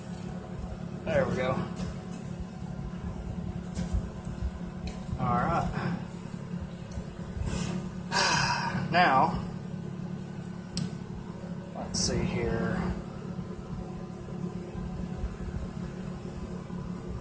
There we go. Alright. Now, let's see here.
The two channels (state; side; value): identical; both; correlation 1.00